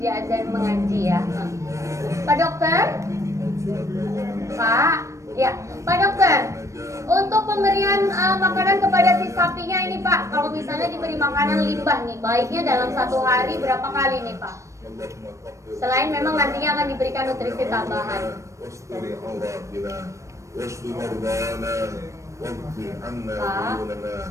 mengaji ya. Pak Dokter. Pak. Ya, Pak Dokter. Untuk pemberian makanan kepada si sapinya ini Pak, kalau misalnya diberi makanan limbah nih, baiknya dalam 1 hari berapa kali nih Pak? Selain memang nantinya akan diberikan nutrisi tambahan.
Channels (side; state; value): left; late; 0.15 ms